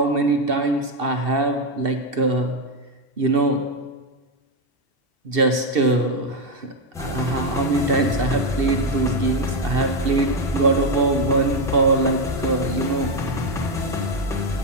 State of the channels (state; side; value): normal; both; correlation 0.05